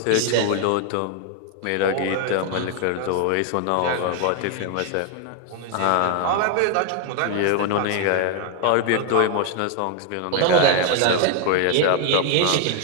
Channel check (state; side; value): different; both; correlation 0.00